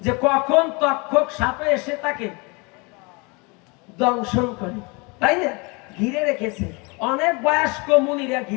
যে কখন তক্ষক সাপে এসে তাকে দংশন করে, তাই না? ঘিরে রেখেছে, অনেক বয়স্ক মুনিরা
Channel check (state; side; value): quieter; right; 29.2 dB